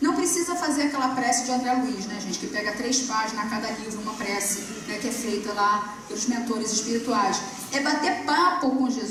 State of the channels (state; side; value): identical; both; correlation 1.00